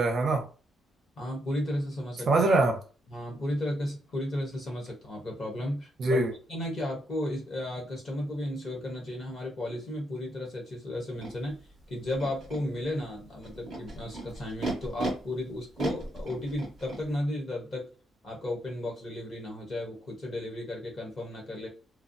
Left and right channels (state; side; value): normal; both; correlation 0.78